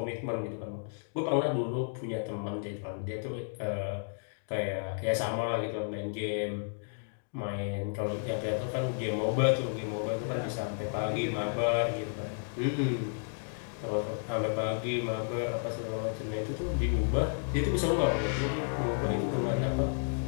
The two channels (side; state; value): right; silent; digital silence